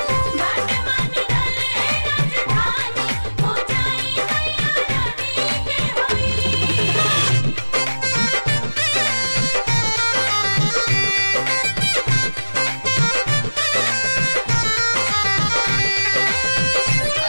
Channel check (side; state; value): both; inverted; correlation -1.00